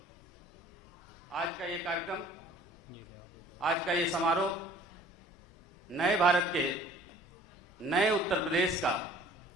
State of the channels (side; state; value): both; normal; correlation 0.52